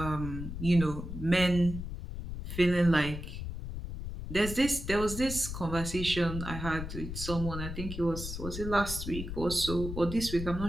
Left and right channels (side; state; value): left; noise; rumble, 7 dB below the sound